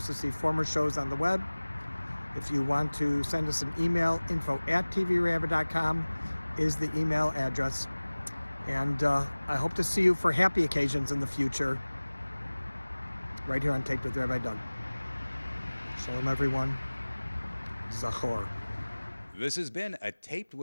see former shows on the web. If you want to send us an email, info@tvrabbi.com is the email address. And I hope to see you for happy occasions in the future, right here on Taped with Rabbi Doug. Shalom, everyone. Zachor. This has been a Taped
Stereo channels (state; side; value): inverted; both; correlation -1.00